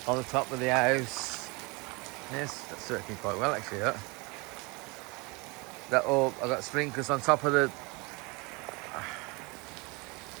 on the top of the house. Yes, that's working quite well actually. That all I got sprinklers on top of the.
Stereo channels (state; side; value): quieter; left; 27.6 dB